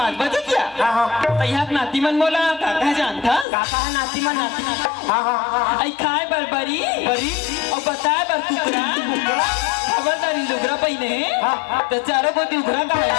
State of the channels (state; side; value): drops out; right; at 3.5 s